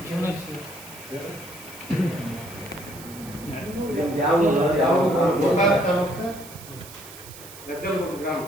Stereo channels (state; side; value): noise; right; hiss, 16 dB below the sound